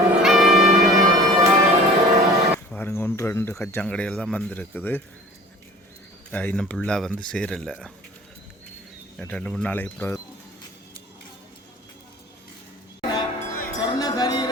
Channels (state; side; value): normal; both; correlation 0.44